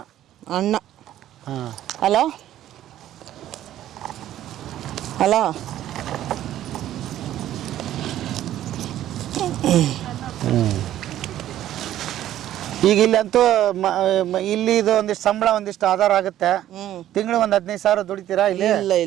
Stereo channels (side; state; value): left; quieter; 12.6 dB